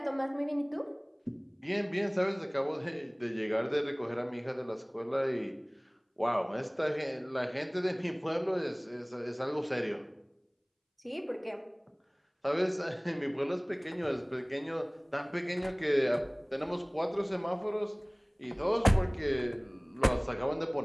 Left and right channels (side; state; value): both; identical; correlation 1.00